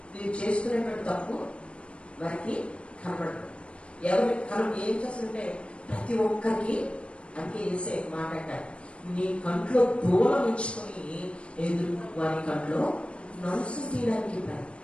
వీరు చేసుకునేటువంటి తప్పు వారికి కనబడదు. ఏం చేస్తుంటే ప్రతి ఒక్కరికి అంటే వేసే మాట్లాడారు. నీ కంట్లో దూలం ఉంచుకొని ఎదురు వారి కంట్లో నలుసు తీయడానికి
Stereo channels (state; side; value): late; right; 0.059 ms